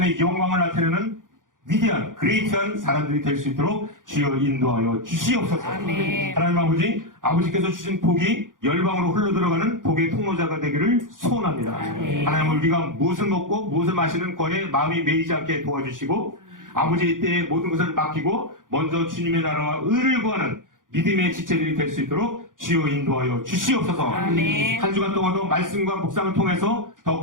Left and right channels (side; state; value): left; late; 0.89 ms